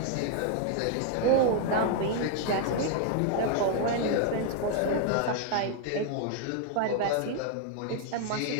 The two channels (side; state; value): both; different; correlation 0.00